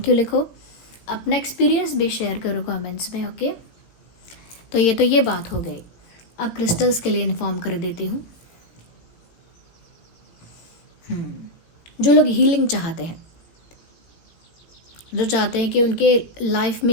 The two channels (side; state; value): right; late; 17 ms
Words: यू लिखो, अपना एक्सपीरियंस भी शेयर करो कमेंट्स में। ओके, तो ये बात हो गई। अब क्रिस्टल्स के लिए इन्फॉर्म कर देती हूँ। जो लोग हीलिंग चाहते हैं, जो चाहते हैं कि उनके लाइफ